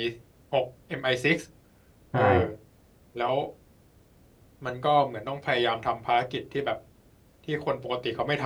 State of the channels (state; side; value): identical; both; correlation 1.00